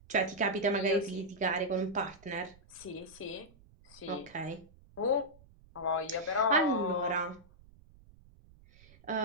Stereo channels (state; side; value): noise; right; rumble, 25 dB below the sound